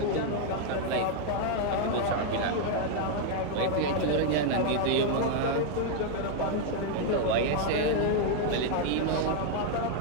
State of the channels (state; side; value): different; both; correlation 0.00